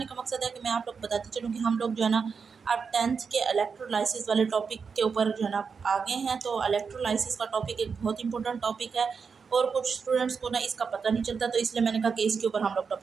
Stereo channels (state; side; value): quieter; left; 5.7 dB